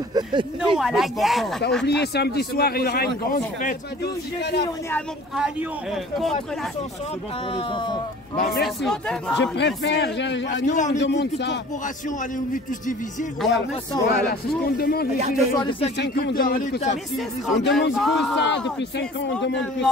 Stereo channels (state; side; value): normal; both; correlation 0.47